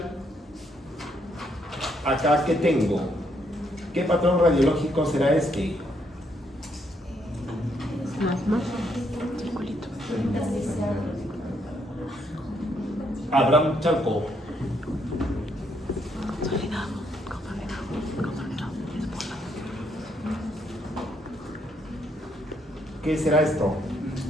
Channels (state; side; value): normal; both; correlation 0.73